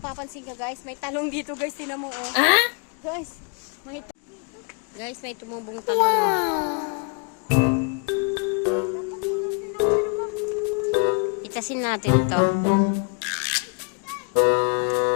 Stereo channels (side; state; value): right; quieter; 38.3 dB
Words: ka guys, may talong dito guys, tingnan mo oh. Guys, may tumubong talong. Wow. Itasin natin ito.